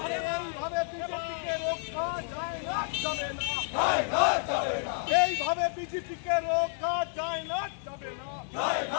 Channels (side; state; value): right; silent; 58 dB below the other